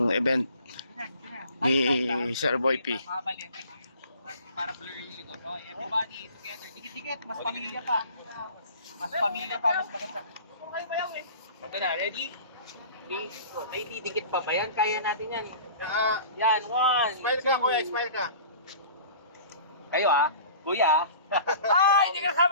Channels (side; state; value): both; inverted; correlation -0.45